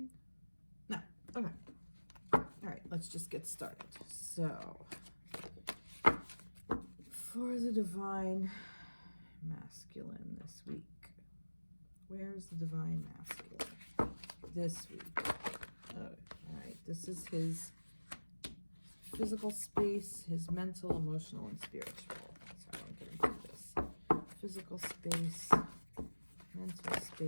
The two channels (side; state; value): both; inverted; correlation -1.00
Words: No, okay. All right, let's just get started. So, for the Divine Masculine this week, where's the Divine Masculine this week? All right, this is his physical space, his mental, emotional, and spiritual. Sorry, I'm getting through this. Physical space, mental